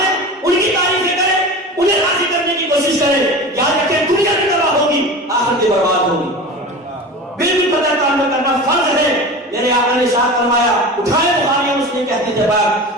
ان کی تعریفیں کریں، انہیں راضی کرنے کی کوشش کریں۔ یاد رکھیں دنیا بھی تباہ ہوگی، آخرت بھی برباد ہوگی۔ بالکل پتہ تعلق کرنا فرض ہے۔ میرے آقا نے ارشاد فرمایا، اٹھائے بخاری اور مسلم کے حدیث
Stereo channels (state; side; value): normal; both; correlation 0.32